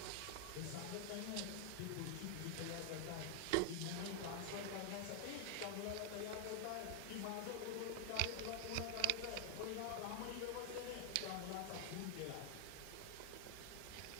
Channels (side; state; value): both; different; correlation 0.00